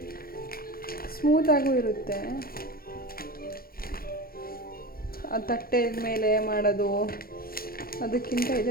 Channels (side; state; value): right; late; 0.43 ms